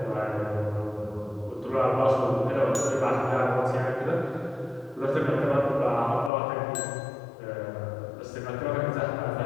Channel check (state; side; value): drops out; right; at 6.3 s